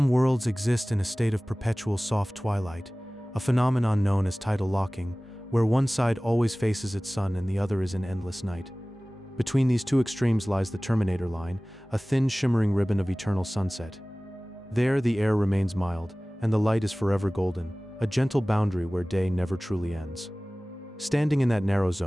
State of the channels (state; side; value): normal; both; correlation 0.98